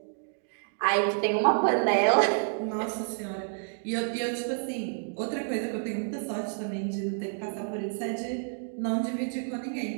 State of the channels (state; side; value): silent; left; digital silence